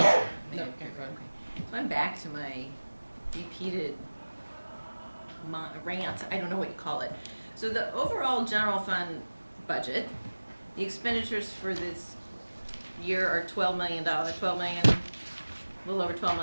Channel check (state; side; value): inverted; both; correlation -1.00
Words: So I'm back to my repeated rant. I don't know what you call it. So the overall general fund budget, the expenditures for this year are $12 million. A little over $12